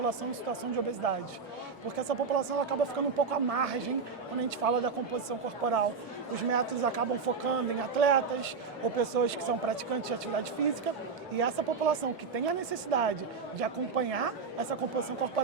em situação de obesidade. Porque essa população ela acaba ficando um pouco à margem quando a gente fala da composição corporal. Os métodos acabam focando em atletas ou pessoas que são praticantes de atividade física e essa população que tem a necessidade de acompanhar essa composição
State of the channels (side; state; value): left; quieter; 5.1 dB